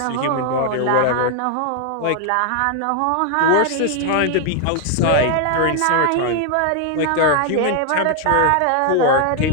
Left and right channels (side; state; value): both; different; correlation 0.00